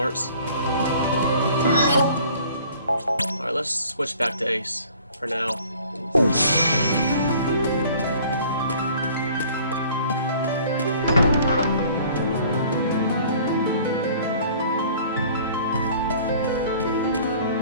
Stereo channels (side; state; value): both; inverted; correlation -0.52